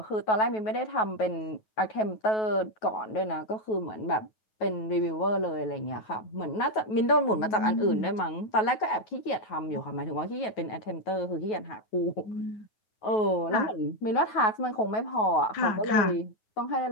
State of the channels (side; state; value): right; late; 9.3 ms